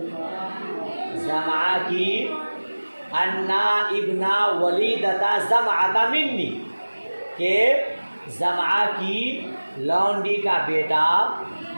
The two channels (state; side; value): inverted; both; correlation -1.00